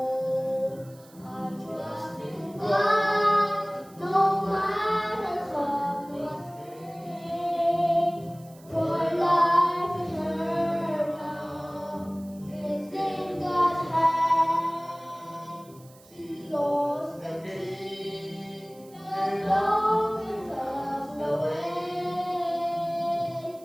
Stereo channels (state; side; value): noise; right; hiss, 26 dB below the sound